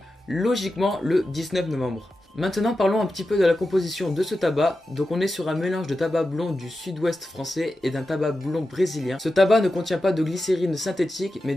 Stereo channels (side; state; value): both; normal; correlation 0.91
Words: logiquement le 19 novembre. Maintenant parlons un petit peu de la composition de ce tabac. Donc on est sur un mélange de tabac blond du sud-ouest français et d'un tabac blond brésilien. Ce tabac ne contient pas de glycérine synthétique mais